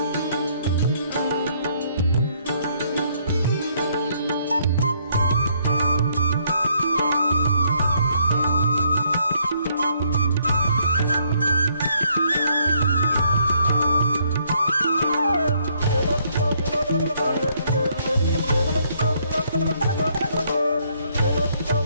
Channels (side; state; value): both; inverted; correlation -0.69